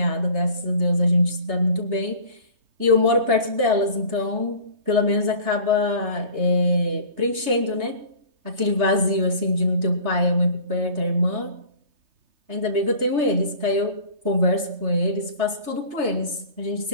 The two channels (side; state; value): left; late; 3.3 ms